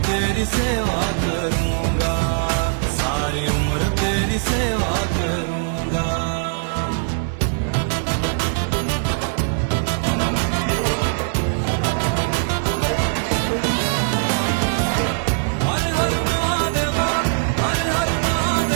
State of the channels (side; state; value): left; silent; 62 dB below the other